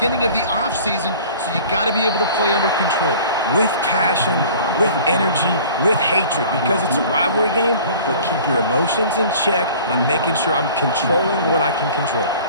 of the offseason, so you got to be able to play under control. With passion, with energy, with hatred, because it's a rivalry game, but keep your emotions in check and making sure I'm controlling what I can control.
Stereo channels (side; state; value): both; inverted; correlation -0.46